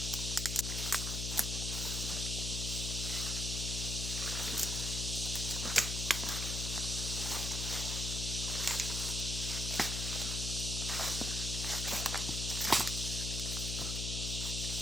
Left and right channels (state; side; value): noise; left; hum, 2 dB below the sound